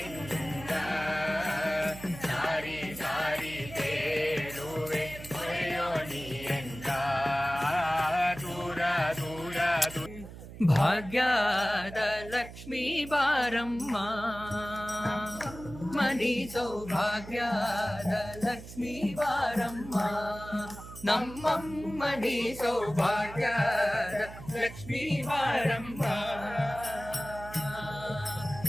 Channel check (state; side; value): noise; right; hum, 14 dB below the sound